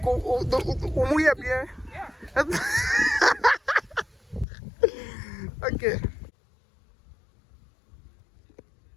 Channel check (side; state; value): right; drops out; at 4.5 s